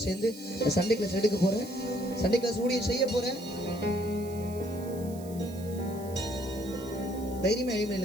சேர்ந்து சண்டே கிளாஸ் எடுக்க போகிறேன், சண்டே கிளாஸ் ஊழியம் செய்ய போகிறேன். தைரியமா எழுப்பி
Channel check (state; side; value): noise; right; hiss, 18 dB below the sound